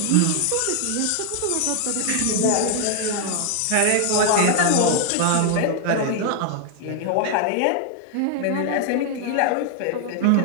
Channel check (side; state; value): both; different; correlation 0.00